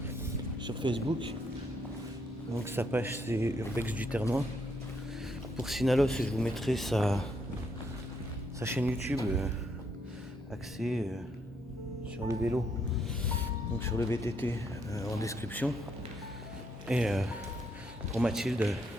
Facebook. Donc sa page c'est Urbex du Ternois. Pour Sinalos, je vous mettrai sa chaîne YouTube axée sur le vélo, donc sur le VTT en description. Et pour Mathilde,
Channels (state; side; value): normal; both; correlation 0.75